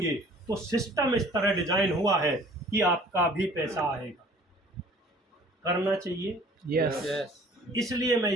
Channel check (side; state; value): both; normal; correlation 0.51